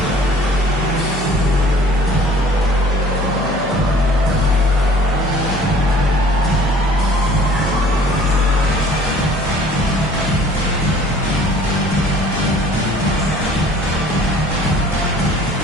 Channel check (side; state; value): both; normal; correlation 0.51